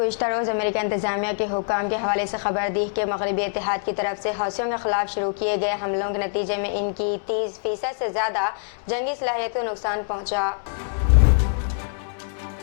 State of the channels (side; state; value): right; silent; digital silence